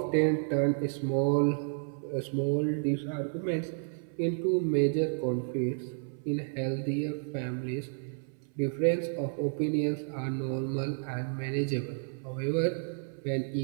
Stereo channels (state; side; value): silent; left; 57 dB below the other